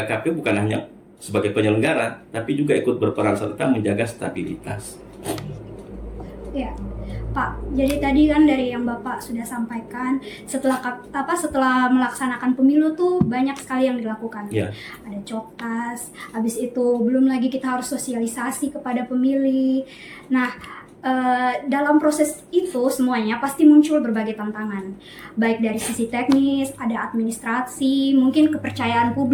KPU bukan hanya sebagai penyelenggara, tapi juga ikut berperan serta menjaga stabilitas. Ya, Pak. Jadi tadi kan dari yang Bapak sudah sampaikan, setelah melaksanakan pemilu tuh banyak sekali yang dilakukan. Ya. Ada coktas, habis itu belum lagi kita harus sosialisasi kepada pemilih. Nah, dalam proses itu semuanya pasti muncul berbagai tantangan, baik dari sisi teknis, ada administrasi, mungkin kepercayaan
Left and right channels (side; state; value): both; identical; correlation 1.00